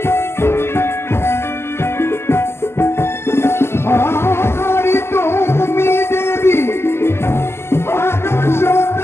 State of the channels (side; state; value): right; late; 0.12 ms